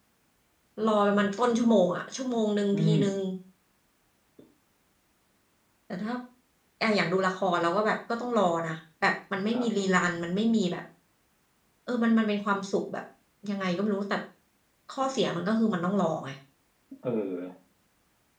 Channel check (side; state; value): both; identical; correlation 1.00